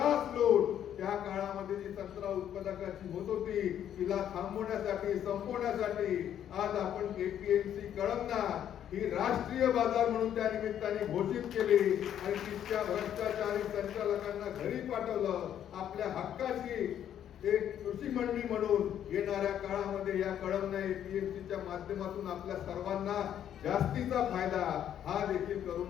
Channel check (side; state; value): right; quieter; 10.1 dB